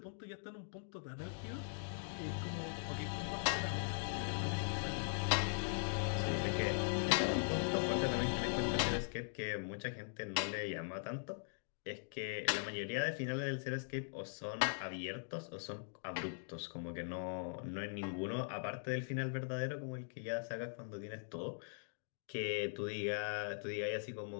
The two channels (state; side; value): silent; right; digital silence